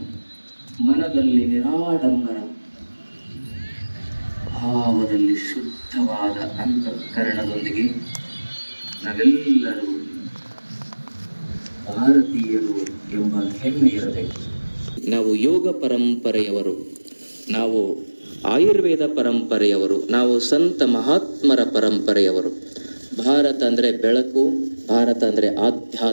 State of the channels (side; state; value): both; inverted; correlation -1.00